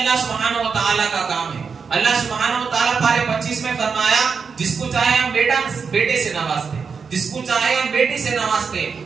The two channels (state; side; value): quieter; left; 5.6 dB